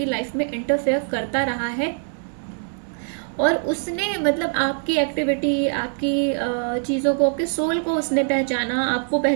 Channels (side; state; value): left; silent; 58 dB below the other